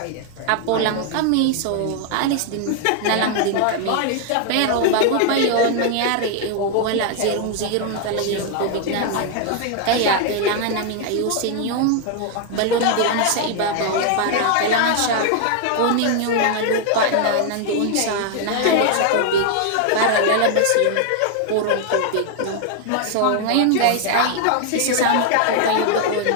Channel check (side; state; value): both; different; correlation 0.00